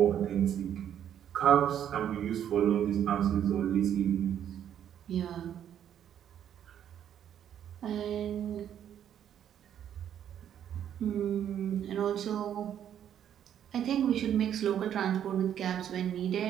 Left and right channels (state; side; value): quieter; left; 9.8 dB